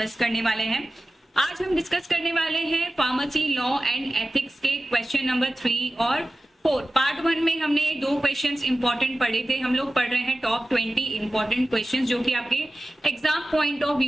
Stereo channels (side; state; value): both; normal; correlation 0.95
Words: करने वाले हैं। आज हम डिस्कस करने वाले हैं फार्मेसी लॉ एंड एथिक्स के क्वेश्चन नंबर 3 और 4। पार्ट 1 में हमने 2 क्वेश्चंस इंपॉर्टेंट पढ़े थे। हम लोग पढ़ रहे हैं टॉप 20 इंपॉर्टेंट क्वेश्चंस, जो कि आपके एग्जाम पॉइंट ऑफ